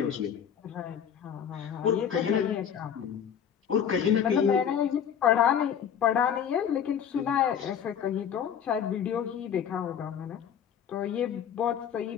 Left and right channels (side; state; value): right; quieter; 8.4 dB